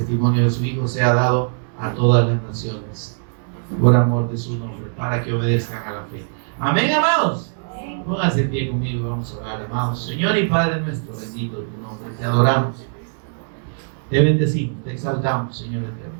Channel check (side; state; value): left; silent; digital silence